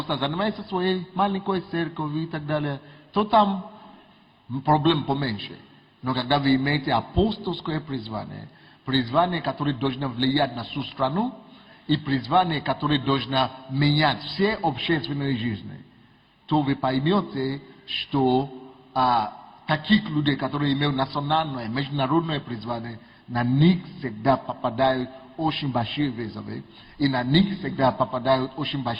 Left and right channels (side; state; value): both; identical; correlation 1.00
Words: занимается своей маленькой церковью и так далее, то там проблем поменьше. Но когда вы имеете апостольское призвание, которое должно влиять на всю страну, и призвание, которое должно менять все общественные жизни, то вы поймете, что таких людей, которые имеют национальное, международное призвание, на них всегда попадают очень большие вызовы, и на них всегда попадают очень